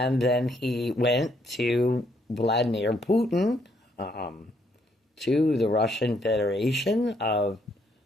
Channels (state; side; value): normal; both; correlation 0.71